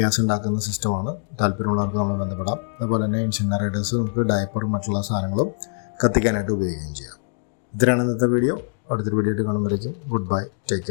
ഉണ്ടാക്കുന്ന സിസ്റ്റമാണ്. താല്പര്യമുള്ളവർക്ക് നമ്മൾ ബന്ധപ്പെടാം. അതുപോലെ തന്നെ ഇൻസിനറേറ്റേഴ്സ് നമുക്ക് ഡയപ്പറും മറ്റുള്ള സാധനങ്ങളും കത്തിക്കാനായിട്ട് ഉപയോഗിക്കുകയും ചെയ്യാം. ഇത്രയാണ് ഇന്നത്തെ വീഡിയോ. അടുത്തൊരു വീഡിയോ ആയിട്ട് കാണുമ്പോഴേക്കും goodbye, take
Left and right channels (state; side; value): silent; right; digital silence